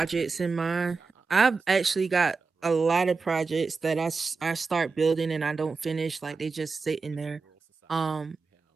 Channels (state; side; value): quieter; left; 4.5 dB